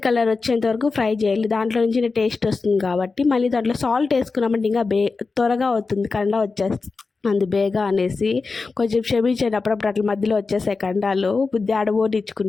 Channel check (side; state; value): right; quieter; 4.2 dB